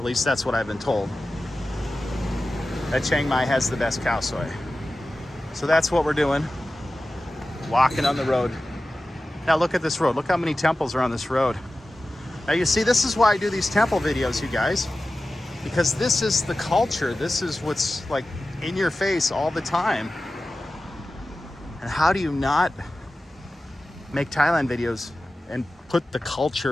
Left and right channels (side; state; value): both; normal; correlation 0.95